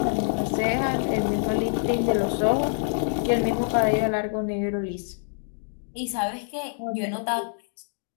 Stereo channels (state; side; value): silent; right; digital silence